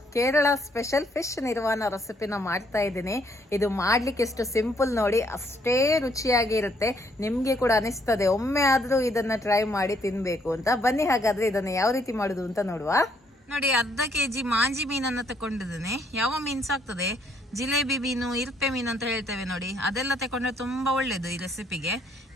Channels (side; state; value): both; normal; correlation 0.69